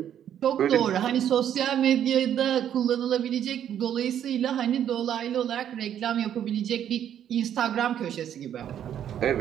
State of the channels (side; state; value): left; quieter; 9.9 dB